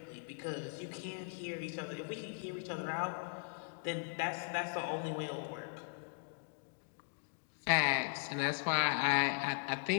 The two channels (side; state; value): right; silent; digital silence